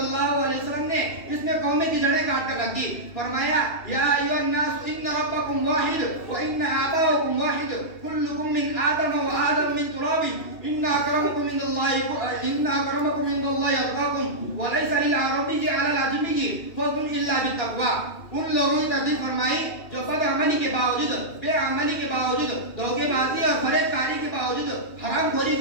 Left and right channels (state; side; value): late; right; 2.7 ms